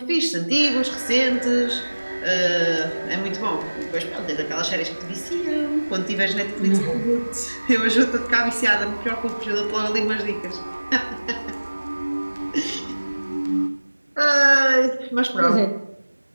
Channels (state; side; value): inverted; both; correlation -1.00